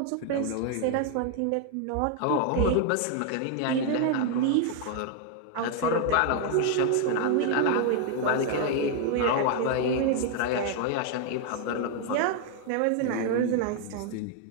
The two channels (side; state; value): both; different; correlation 0.00